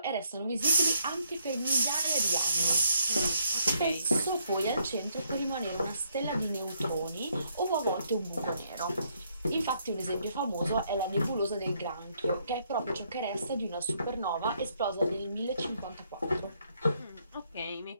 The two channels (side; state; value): both; inverted; correlation -0.72